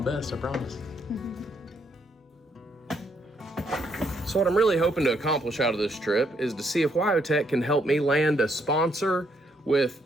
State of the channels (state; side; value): normal; both; correlation 0.73